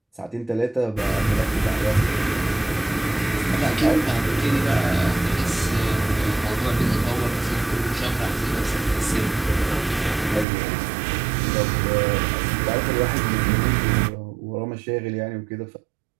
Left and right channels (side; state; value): left; drops out; at 10.5 s